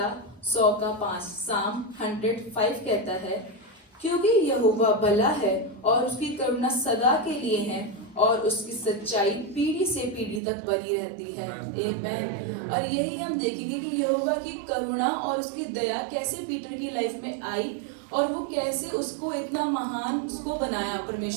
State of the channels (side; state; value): left; drops out; at 10.4 s